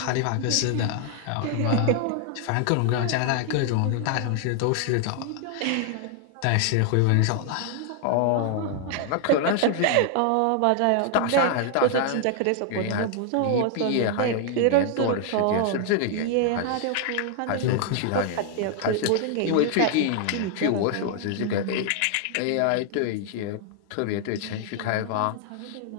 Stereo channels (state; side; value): different; both; correlation 0.00